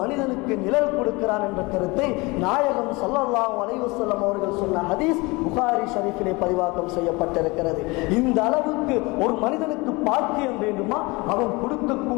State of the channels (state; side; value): quieter; right; 24.8 dB